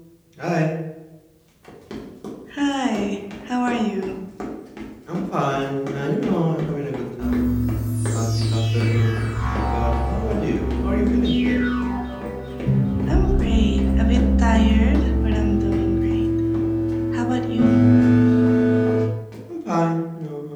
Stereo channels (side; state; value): both; identical; correlation 1.00